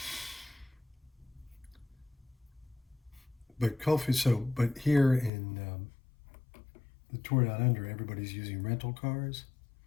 But but here in the Tour Down Under, everybody's using rental cars.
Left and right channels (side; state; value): right; drops out; at 5.3 s